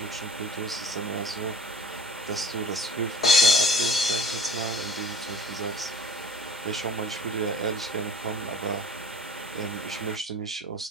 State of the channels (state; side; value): normal; both; correlation 0.44